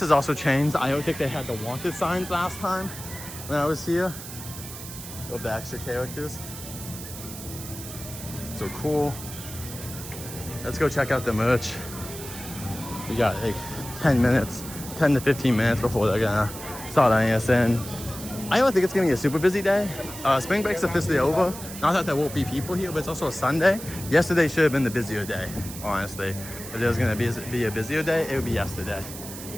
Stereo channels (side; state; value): right; noise; hiss, 12 dB below the sound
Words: has also changed. I don't think they had the wanted signs last time when I was here. Of the extra characters. So cool. Let's go check out the merch. We got like 10 to 15 minutes before they're gonna start letting us in. I don't think it's gonna be a super busy day. Spring break's officially over. Not that there won't be people here, but it's also a Sunday. Yesterday should have been the busier day, honestly. If there was gonna be a busier day, it would be yesterday.